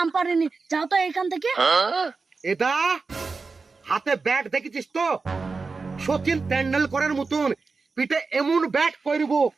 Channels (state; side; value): quieter; left; 4.3 dB